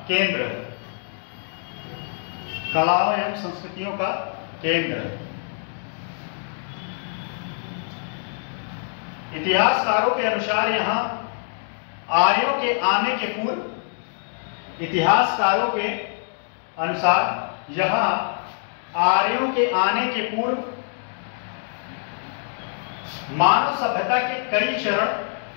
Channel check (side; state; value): right; silent; 62 dB below the other